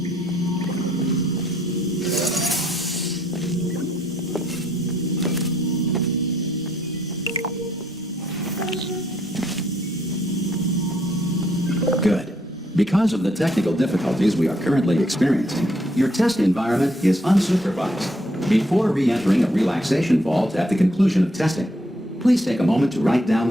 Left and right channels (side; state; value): both; normal; correlation 0.71